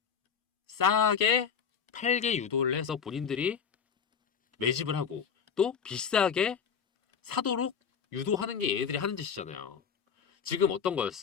싸게 팔게 유도를 해서 본인들이 매집을 하고, 또 비싸게 사도록 유도하는 게 얘네들이 하는 짓이잖아요. 지금 어떤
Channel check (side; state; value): right; quieter; 6.9 dB